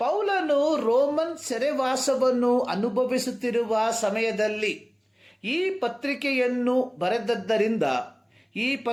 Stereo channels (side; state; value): both; identical; correlation 1.00